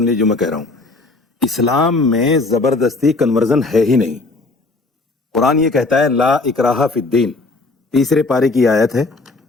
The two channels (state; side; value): quieter; right; 3.4 dB